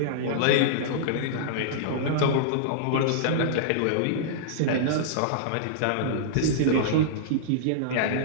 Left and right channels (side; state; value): both; different; correlation -0.02